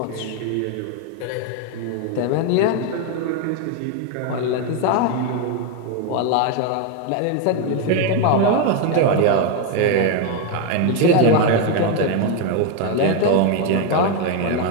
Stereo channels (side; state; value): both; different; correlation 0.02